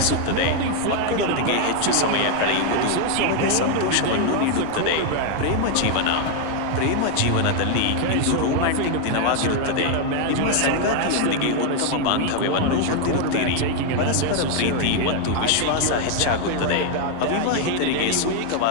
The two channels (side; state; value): both; different; correlation 0.00